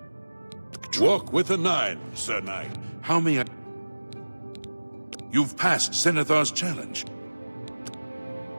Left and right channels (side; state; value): both; inverted; correlation -1.00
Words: Walk with the 9, Sir Knight. How may I... You've passed Zenithar's challenge.